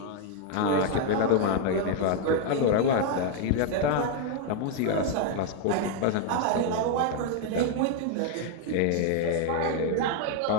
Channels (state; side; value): different; both; correlation 0.01